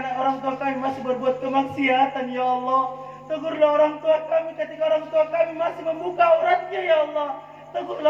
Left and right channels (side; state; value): both; identical; correlation 1.00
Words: orang tua kami masih berbuat kemaksiatan ya Allah. Tegurlah orang tua kami ketika orang tua kami masih membuka auratnya ya Allah.